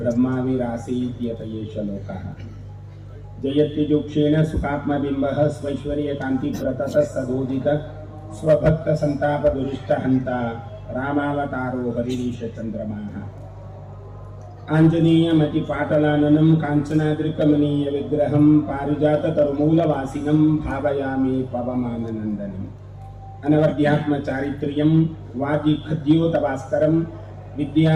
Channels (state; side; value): identical; both; correlation 1.00